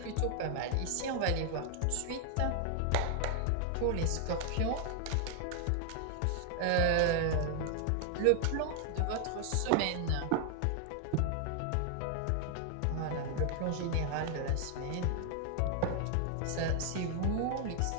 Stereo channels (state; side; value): different; both; correlation 0.00